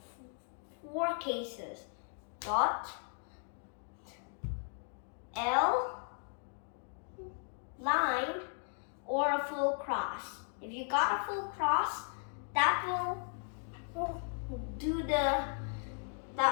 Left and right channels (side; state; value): right; silent; 53 dB below the other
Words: 4 cases: dot, L, line, or a full cross. If you got a full cross, that will do